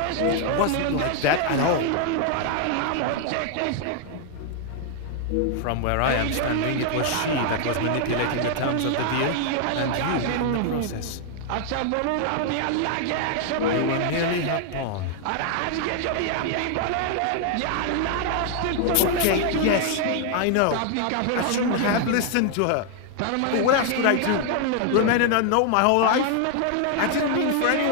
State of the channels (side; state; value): both; different; correlation 0.00